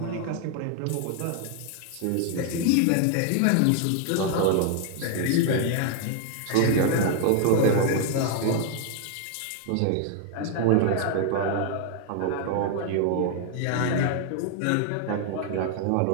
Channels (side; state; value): both; different; correlation 0.00